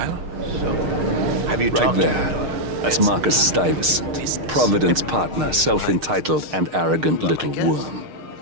So, have you Right talked to your there. daughter? That's Marcus Stuyvesant, Providence partner, self-entitled and arrogant little worm.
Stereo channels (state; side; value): late; left; 6.5 ms